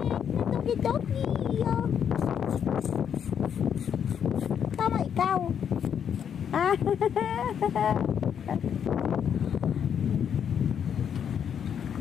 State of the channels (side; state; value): right; quieter; 8.2 dB